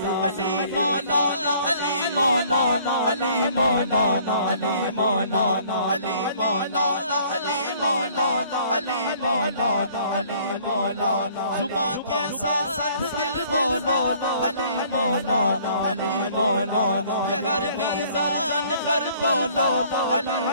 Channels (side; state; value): both; inverted; correlation -0.57